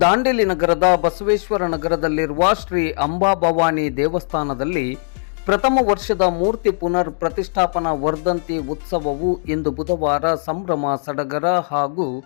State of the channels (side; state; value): right; silent; digital silence